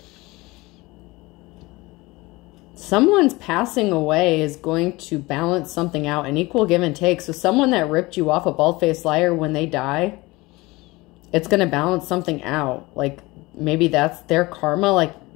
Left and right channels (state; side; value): quieter; right; 21.9 dB